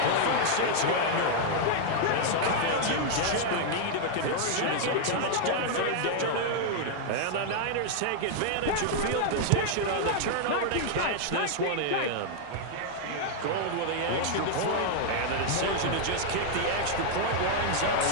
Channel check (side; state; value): both; different; correlation 0.00